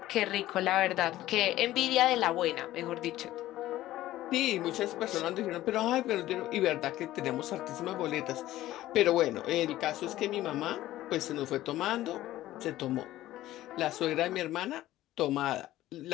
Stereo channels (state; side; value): quieter; right; 15.1 dB